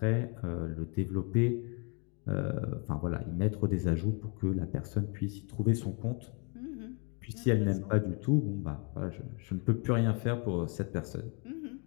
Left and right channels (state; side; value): quieter; right; 35.4 dB